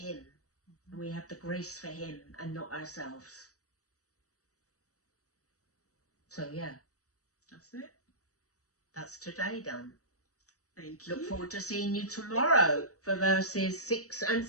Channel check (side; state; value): right; late; 0.66 ms